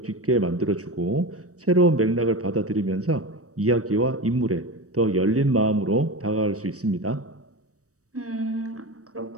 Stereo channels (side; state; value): left; late; 0.66 ms